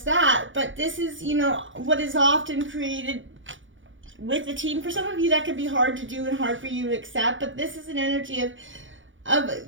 that. But this is, you know, what is often created with the team. For some of you, that could be hard to do and hard for you to accept. But this is an energy of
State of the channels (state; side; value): late; left; 0.56 ms